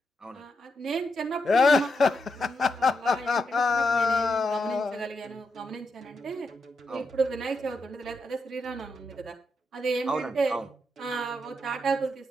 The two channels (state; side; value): normal; both; correlation 0.84